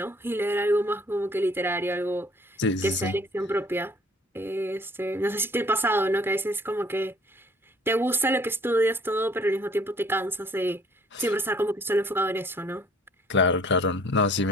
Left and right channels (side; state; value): both; normal; correlation 0.57